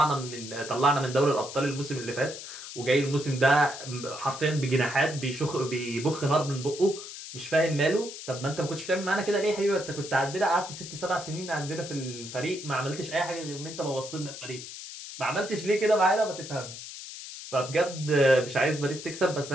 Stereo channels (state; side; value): noise; left; hiss, 11 dB below the sound